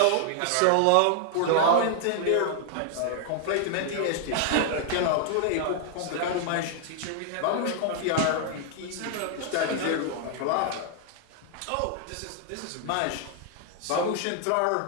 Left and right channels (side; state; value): both; different; correlation 0.00